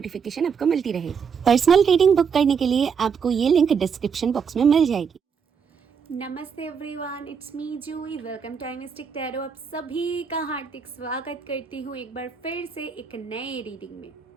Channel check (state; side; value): quieter; left; 6.4 dB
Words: आपको मिलती रहे। पर्सनल रीडिंग बुक करने के लिए आपको ये लिंक डिस्क्रिप्शन बॉक्स में मिल जाएगी। नमस्ते everyone, it's me Juhi. Welcome to mystic tarot. आप सभी का हार्दिक स्वागत करती हूँ एक बार फिर से एक नए रीडिंग में।